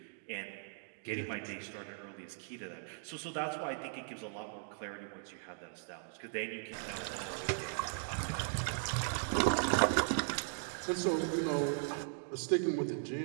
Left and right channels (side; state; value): left; silent; digital silence